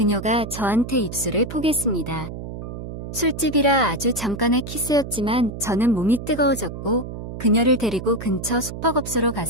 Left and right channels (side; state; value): right; noise; hum, 8 dB below the sound